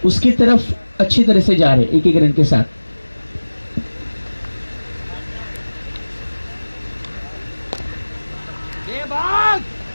उसकी तरफ अच्छी तरह से जा रहे 1 रन के साथ.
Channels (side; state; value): both; inverted; correlation -1.00